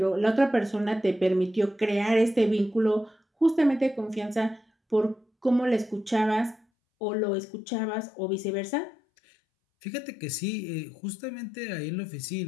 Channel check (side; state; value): right; drops out; at 6.6 s